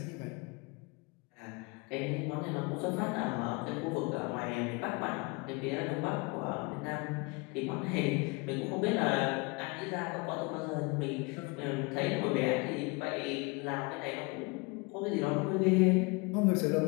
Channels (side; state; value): right; quieter; 28.3 dB